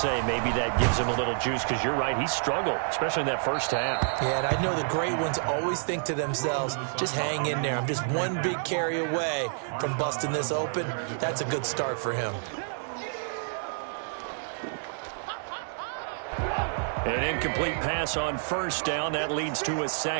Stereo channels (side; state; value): left; silent; 59 dB below the other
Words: maybe that gives him a little juice, because you're right, he struggled, especially in that 1st half. Yeah, and I know the great ones always think to themselves, just hang in there. I'm just one big carry away from busting this open. That's a good start for him. An incomplete pass on 1st down. That leads to a